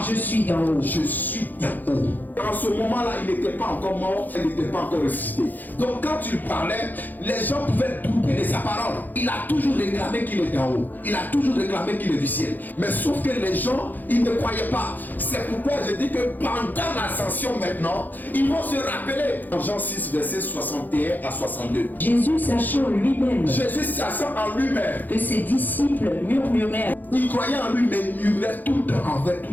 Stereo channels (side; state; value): right; late; 0.085 ms